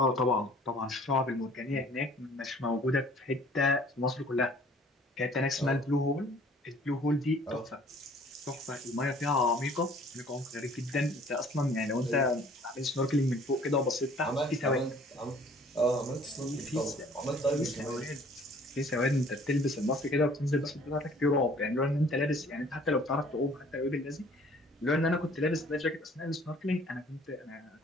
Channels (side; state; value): both; normal; correlation 0.54